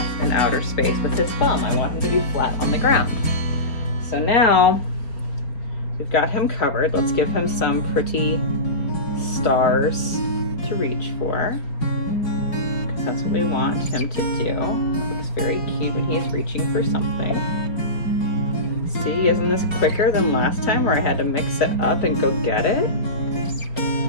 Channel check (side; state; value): right; late; 4.4 ms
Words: in outer space with his thumb. I want him to be flat on the ground. So now we've got him covered. Let's give him some pretty stars to reach for, because that's what we want him to do. It looks very cute when he's reaching for something. See, isn't this quicker than last time where I had to mix it up and go get it?